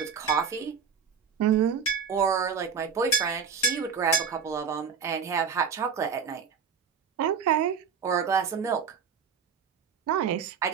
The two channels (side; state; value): left; quieter; 6.4 dB